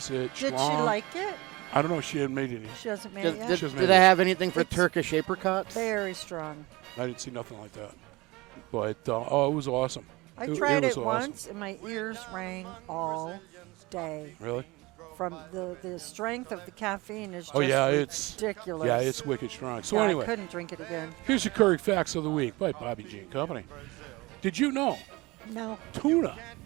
it strong? Did she like it? I don't know. She hadn't made any. She hasn't made it yet. She hasn't Did made they it. have anything for It's Turkish apricots? Very strong. I didn't see nothing like that. But it was awesome. I tried was it awesome. once, and my ears rang all day. Really? From the strength of the caffeine is just Oh yeah, it's ridiculous. Yeah, it's wicked strong. So Yeah, anyway, I couldn't drink it again. here's your Curry Facts of the Week by Bobby G and Company. Did you know No. tuna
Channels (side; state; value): left; quieter; 22.2 dB